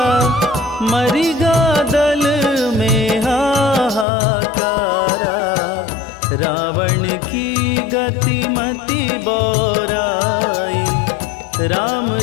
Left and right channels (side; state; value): right; drops out; at 4.0 s